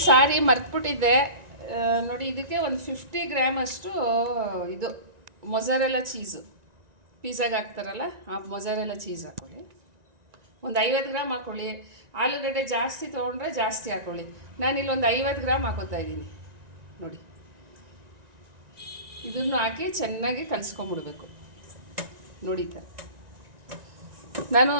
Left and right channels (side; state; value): left; late; 1.9 ms